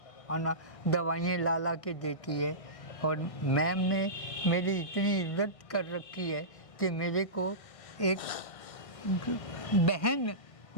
खाना दवाइयाँ ला के देती है। और मैम ने मेरी इतनी इज्जत कर रखी है कि मेरे को एक बहन,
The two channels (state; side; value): late; right; 1.6 ms